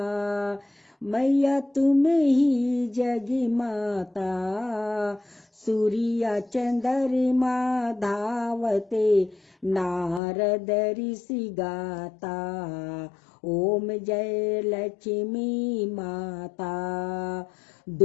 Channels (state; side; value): drops out; right; at 10.2 s